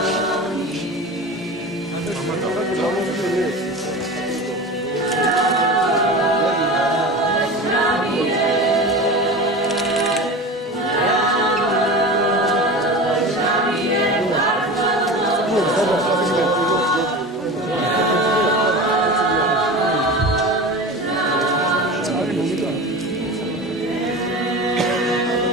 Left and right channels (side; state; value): both; normal; correlation 0.31